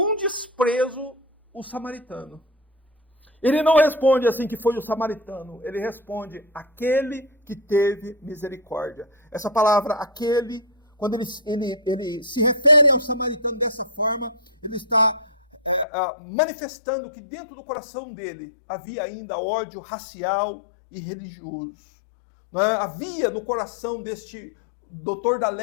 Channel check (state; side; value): drops out; right; at 15.9 s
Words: desprezo o samaritano. Ele não responde assim que foi o samaritano, ele responde aquele que teve misericórdia. Essa palavra, aquele, quando ele se refere ao samaritano dessa forma, ele está manifestando que dentro do coração dele havia ainda ódio racial e religioso. Havia no coração deste doutor da